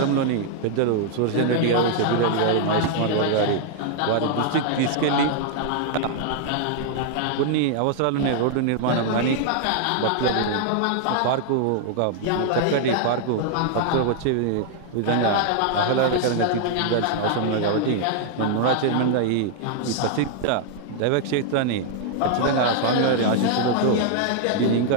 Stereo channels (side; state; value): both; different; correlation 0.00